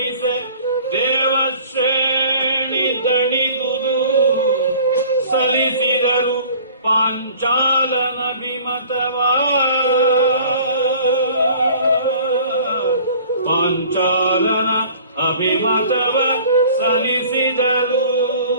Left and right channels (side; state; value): both; inverted; correlation -0.49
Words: ದೇವಶ್ರೇಣಿ ದಣಿದುದು ಸಲ್ಲಿಸಿದರು ಪಾಂಚಾಲನ ವಿಮತವಾ, ಪಾಂಚಾಲನ ಅಭಿಮತವ ಸಲ್ಲಿಸಿದರು.